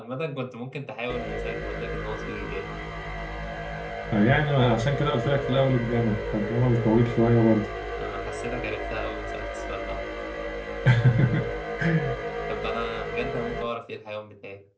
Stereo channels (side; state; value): both; identical; correlation 1.00